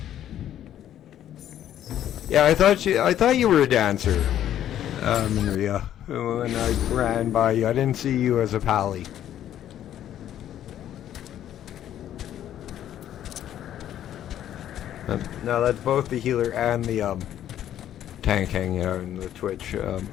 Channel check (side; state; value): right; quieter; 11.2 dB